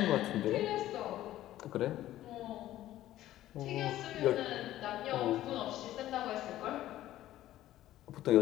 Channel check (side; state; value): right; quieter; 14.0 dB